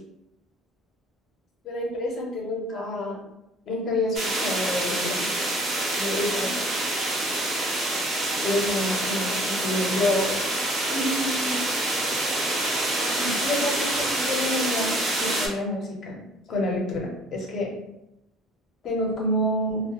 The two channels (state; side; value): normal; both; correlation 0.52